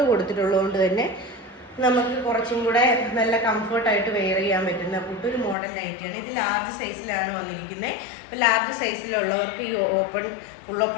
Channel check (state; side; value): drops out; right; at 5.6 s